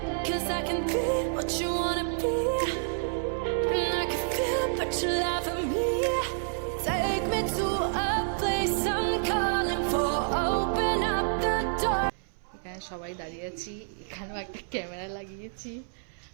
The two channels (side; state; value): left; silent; 59 dB below the other